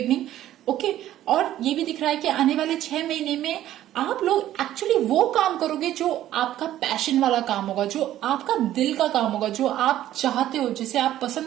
ओके। और ये भी दिख रहा है कि आने वाले 6 महीने में आप लोग एक्चुअली वो काम करोगे जो आपका पैशन वाला काम होगा, जो आपका दिल का काम होगा, जो आप चाहते हो, जिसे आप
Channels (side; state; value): left; quieter; 12.9 dB